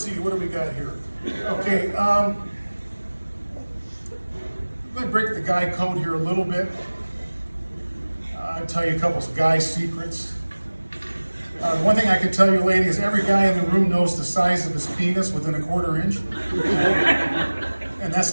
see, what do we got here? Okay, I'm going to break the guy code here a little bit. I'll tell you a couple of guy secrets. One thing I can tell you, lady, is every guy in the room knows the size of his penis within a quarter inch. And that's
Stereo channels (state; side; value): inverted; both; correlation -1.00